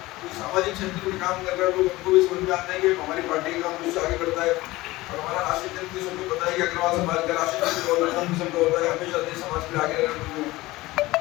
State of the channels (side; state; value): right; quieter; 19.3 dB